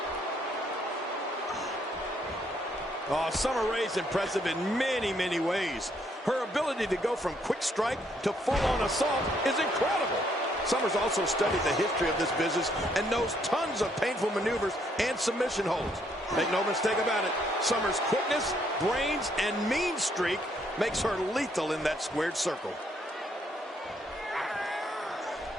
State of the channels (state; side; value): normal; both; correlation 0.70